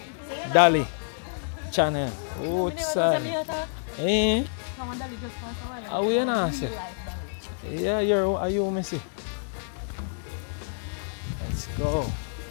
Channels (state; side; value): silent; right; digital silence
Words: Dolly channel. Outside. Eh? come on, Dolly, just for a while. Are we in answer? Yeah, are you missing? Let's go.